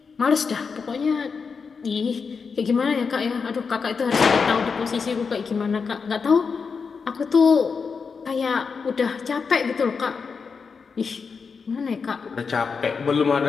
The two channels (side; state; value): right; quieter; 5.4 dB